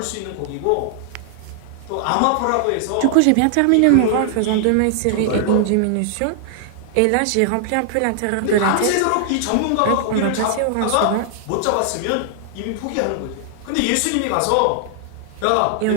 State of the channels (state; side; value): different; both; correlation -0.01